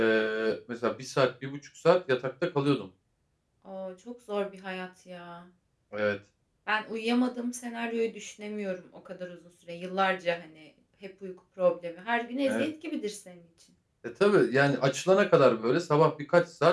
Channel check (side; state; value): both; identical; correlation 1.00